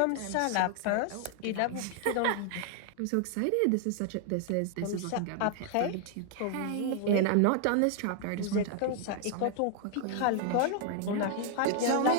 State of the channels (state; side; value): different; both; correlation 0.00